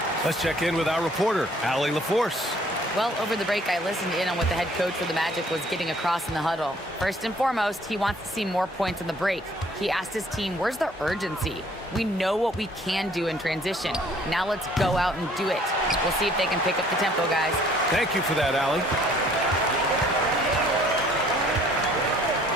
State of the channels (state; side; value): normal; both; correlation 0.59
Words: Let's check in with our reporter, Allie LaForce. Well, over the break, I listened in on what the head coach for the Magic was getting across in the huddle. First and foremost, he wants to see more points in the break. He asked his team, where's the urgency? We know what we can do in transition. Now let's go out and do it. We'll see if they can pick up the tempo, guys. Thank you for that, Allie.